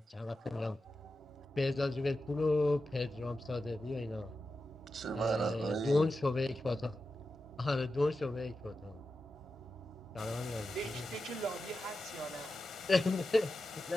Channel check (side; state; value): both; normal; correlation 0.91